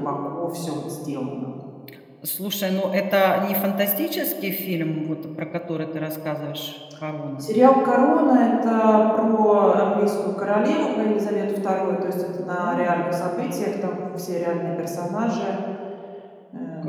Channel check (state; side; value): identical; both; correlation 1.00